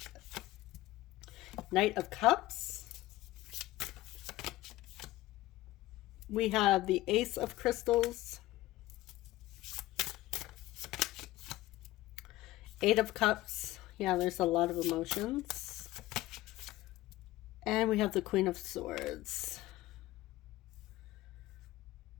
Knight of Cups. We have the Ace of Crystals. 8 of Cups. Yeah, there's a lot of emotions. And we have the Queen of Swords.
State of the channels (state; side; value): quieter; right; 17.0 dB